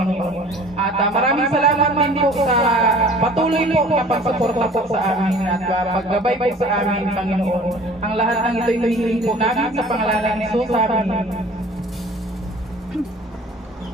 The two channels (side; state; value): both; normal; correlation 0.48